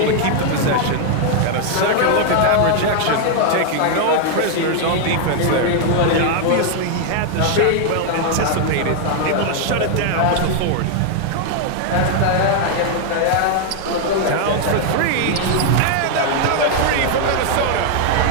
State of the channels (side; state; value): both; different; correlation 0.00